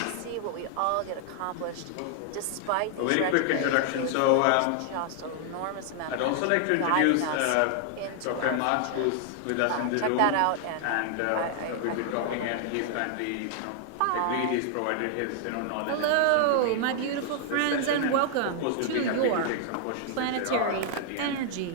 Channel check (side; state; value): both; different; correlation 0.00